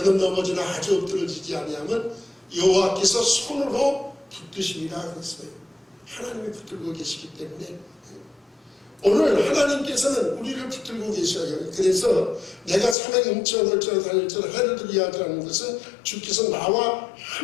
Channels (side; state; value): right; drops out; at 13.0 s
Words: 넘어지나 아주 엎드러지지 아니하면 여호와께서 손으로 붙드시리라 그랬어요. 하나님이 붙들고 계시기 때문에 오늘 하나님께서는 우리를 붙들고 계셔요. 그래서 내가 사망의 음침한 골짜기로 다닐지라도 해를 두려워하지 않는 것은 주께서 나와